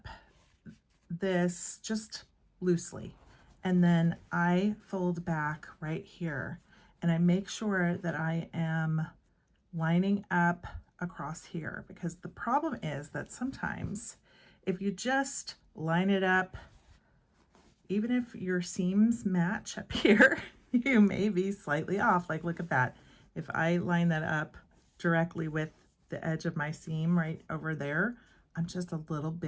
this just loosely, and then I fold back right here, and I make sure that I am lining up across here, because the problem is that sometimes if you just line it up, even if your seams match up here, you may be slightly off. Like, look at that. If I line that up directly with the edge of my seam right over there, I'm just a little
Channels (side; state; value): both; identical; correlation 1.00